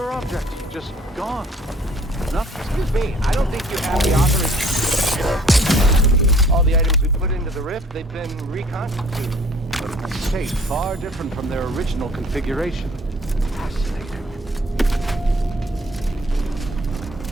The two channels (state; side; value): normal; both; correlation 0.56